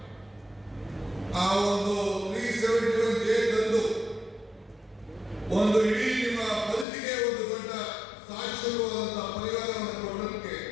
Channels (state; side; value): drops out; right; at 6.9 s